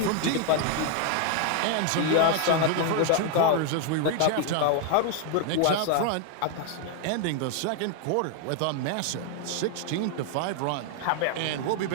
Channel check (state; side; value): different; both; correlation 0.00